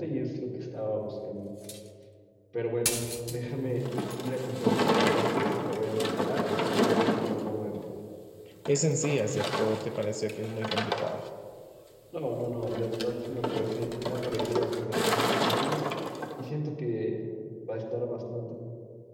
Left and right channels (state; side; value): identical; both; correlation 1.00